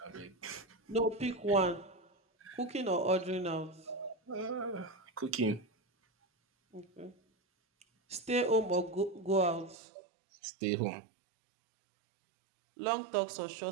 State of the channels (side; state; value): left; drops out; at 9.8 s